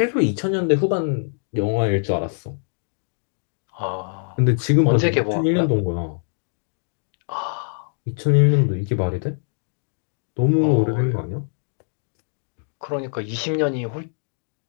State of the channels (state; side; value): silent; right; digital silence